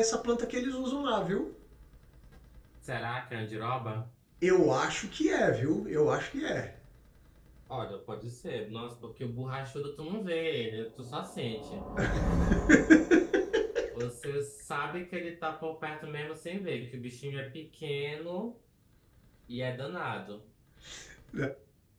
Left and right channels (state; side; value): identical; both; correlation 1.00